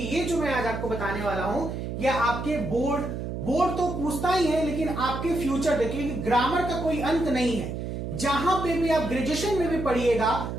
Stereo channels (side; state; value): right; noise; hum, 5 dB below the sound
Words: ये जो मैं आज आपको बताने वाला हूं ये आपके बोर्ड तो पूछता ही है, लेकिन आपके फ्यूचर देखिए, ग्रामर का कोई अंत नहीं है। जहां पे भी आप ग्रेजुएशन में भी पढ़िएगा,